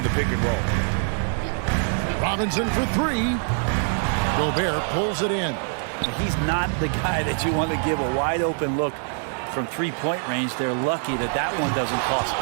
the pick and roll. Robinson for 3. Gobert pulls it in. He's not the guy that you want to give a wide open look from 3-point range. They're lucky that that one doesn't cost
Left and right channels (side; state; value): left; silent; 56 dB below the other